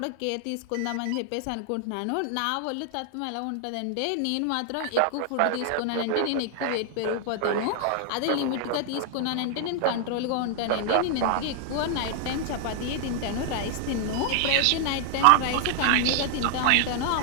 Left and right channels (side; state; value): both; different; correlation 0.00